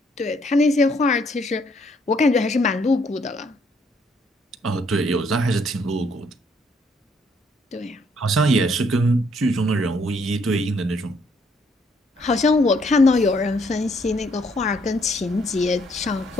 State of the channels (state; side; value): normal; both; correlation 0.68